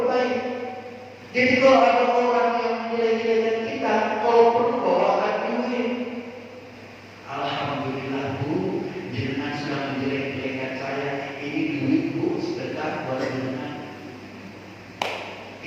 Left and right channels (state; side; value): identical; both; correlation 1.00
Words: baik. Jadi kalau ada orang yang menjelek-jelekkan kita, kalau perlu bawakan duit. Alhamdulillah Bu, jenengan sudah menjelek-jelekkan saya. Ini duit Bu, sedekah buat jenengan.